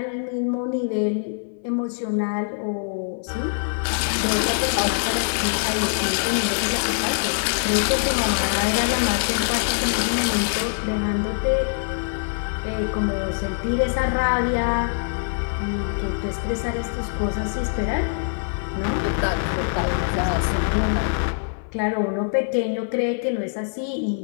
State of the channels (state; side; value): silent; right; 57 dB below the other